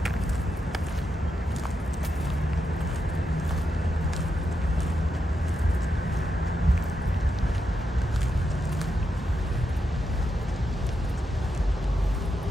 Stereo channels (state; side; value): normal; both; correlation 0.85